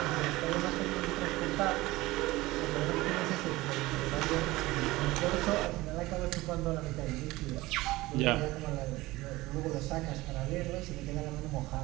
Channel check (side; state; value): left; quieter; 19.4 dB